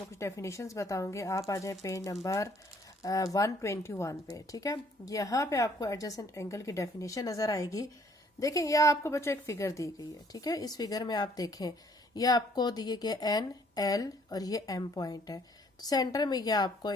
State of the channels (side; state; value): both; normal; correlation 0.62